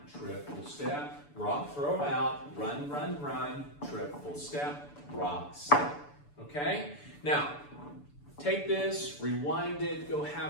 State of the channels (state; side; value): late; right; 6.9 ms